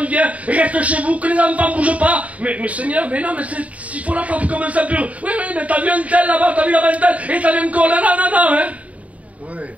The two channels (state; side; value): late; left; 0.068 ms